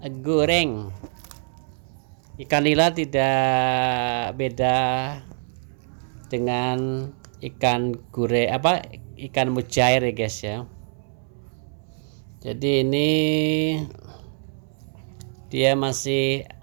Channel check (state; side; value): silent; left; 62 dB below the other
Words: goreng. Ikan nila tidak beda dengan ikan mujair ya guys ya. Jadi ini dia masih